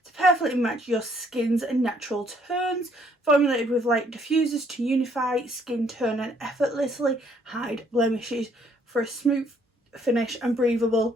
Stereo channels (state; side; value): normal; both; correlation 0.66